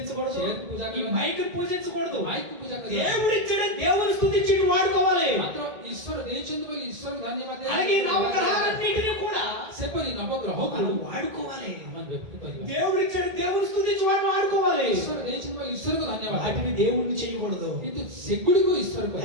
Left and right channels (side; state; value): left; late; 2.3 ms